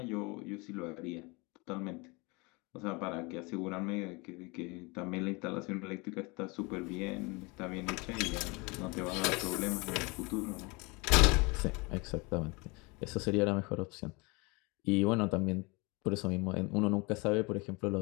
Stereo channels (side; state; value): right; quieter; 27.3 dB